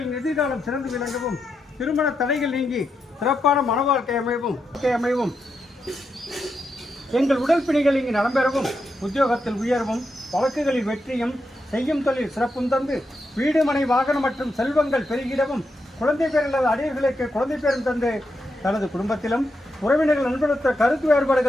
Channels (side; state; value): both; normal; correlation 0.84